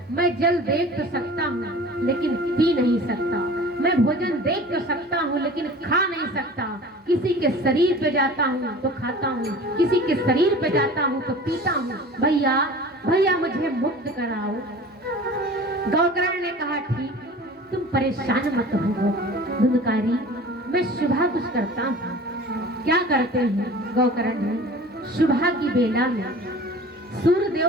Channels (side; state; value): both; normal; correlation 0.41